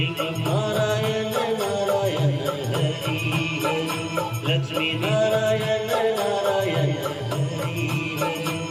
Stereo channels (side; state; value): both; identical; correlation 1.00